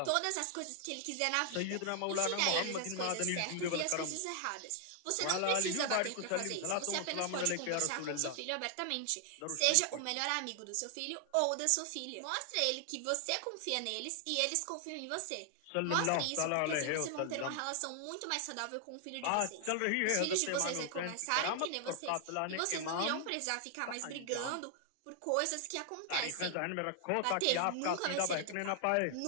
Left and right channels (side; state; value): both; different; correlation 0.00